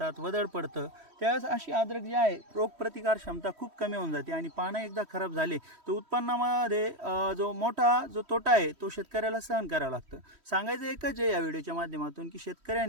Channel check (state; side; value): late; left; 3.1 ms